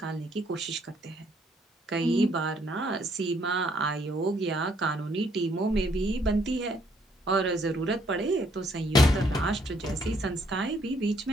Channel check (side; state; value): both; normal; correlation 0.68